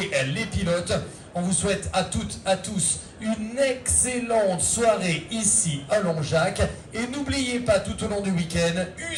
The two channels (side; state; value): both; identical; correlation 1.00